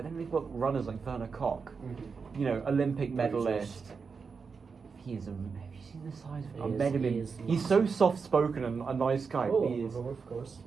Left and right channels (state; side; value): quieter; left; 5.3 dB